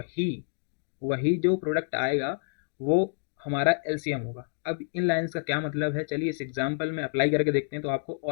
वही जो प्रोडक्ट आएगा वो हमारा एलसीएम होगा। अब इन लाइंस का क्या मतलब है, चलिए इस एग्जांपल में अप्लाई करके देखते हैं तो आपको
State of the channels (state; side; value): silent; right; digital silence